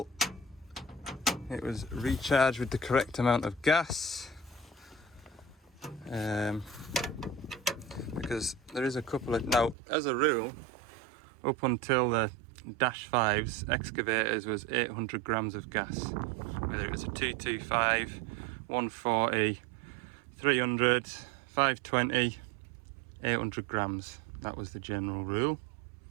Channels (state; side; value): drops out; left; at 9.8 s